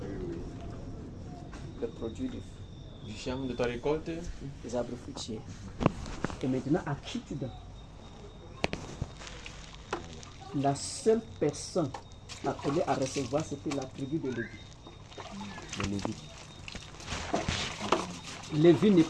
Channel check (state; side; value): identical; both; correlation 1.00